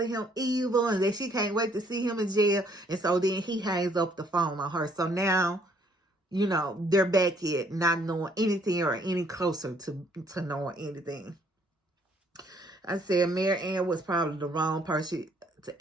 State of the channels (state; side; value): normal; both; correlation 0.64